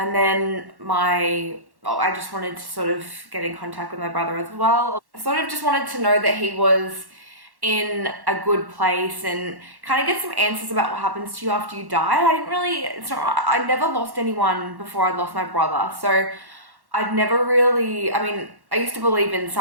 then I just wanted to sort of get in contact with my brother as well. I sort of just wanted to know that he was in a good place and kind of get some answers about what happens to you after you die. I never lost anyone before I lost my brother. So I'd never really, I used to believe in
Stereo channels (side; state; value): left; late; 1.1 ms